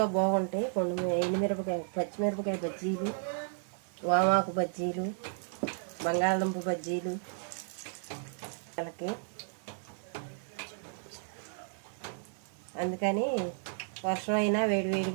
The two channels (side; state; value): left; silent; 56 dB below the other